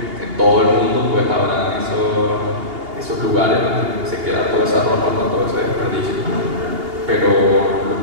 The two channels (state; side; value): late; left; 2.8 ms